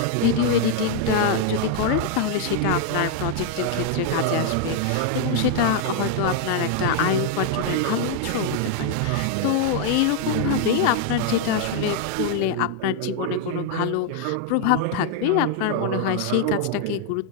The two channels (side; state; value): both; different; correlation 0.00